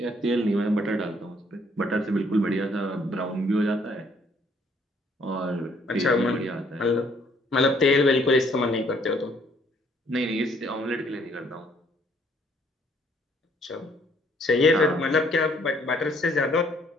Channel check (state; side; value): normal; both; correlation 0.65